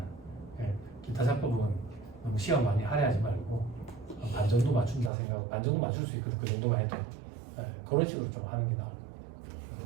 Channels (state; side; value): drops out; left; at 5.1 s